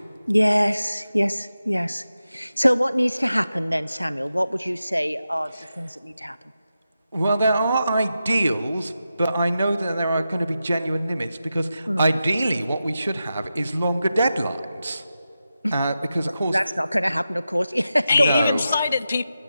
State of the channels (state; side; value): inverted; both; correlation -0.91